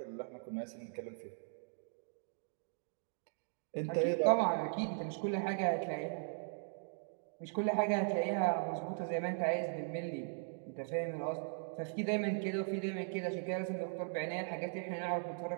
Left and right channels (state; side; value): silent; left; digital silence